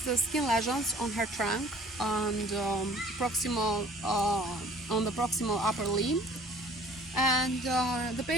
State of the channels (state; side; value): normal; both; correlation 0.51